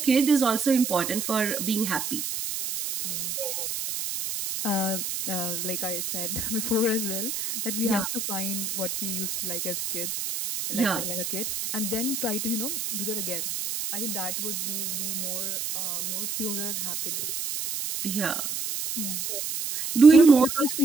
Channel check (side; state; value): right; noise; hiss, 3 dB below the sound